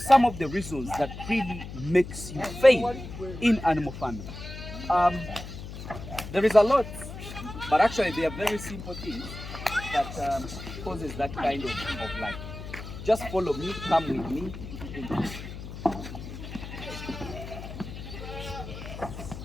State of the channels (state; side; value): noise; left; hum, 10 dB below the sound